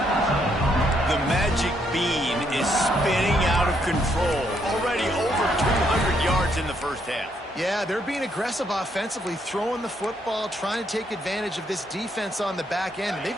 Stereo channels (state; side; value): normal; both; correlation 0.73